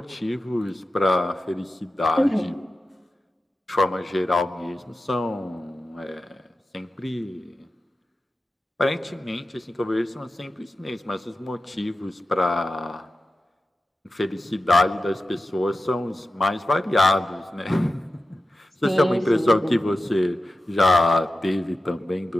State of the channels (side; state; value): both; normal; correlation 0.93